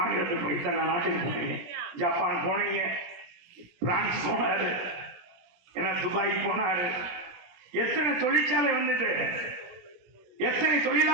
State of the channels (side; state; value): left; late; 17 ms